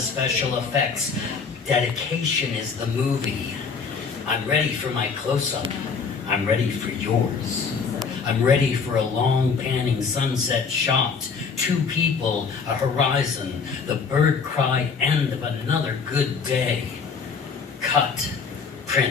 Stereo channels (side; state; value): right; quieter; 5.5 dB